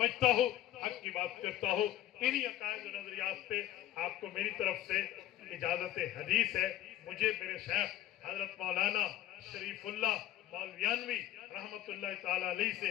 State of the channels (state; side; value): quieter; right; 13.2 dB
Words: ہوں، حق کی بات کرتا ہوں، انہی عقائد و نظریات پہ آپ کو میری طرف سے اجازت حدیث ہے۔ مجھے میرے شیخ حضرت مولانا شریف اللہ مولویانوی رحمت اللہ تعالیٰ علیہ سے